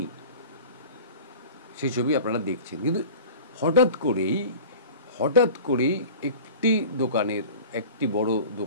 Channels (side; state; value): both; inverted; correlation -0.39